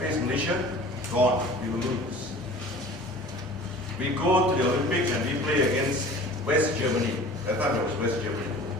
Malaysia, gone, we will lose. We go to the Olympics and we play against West Germany. That time it was West Germany,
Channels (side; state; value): both; normal; correlation 0.43